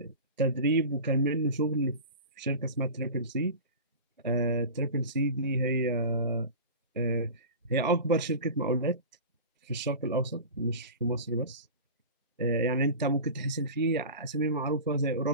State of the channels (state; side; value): inverted; both; correlation -0.33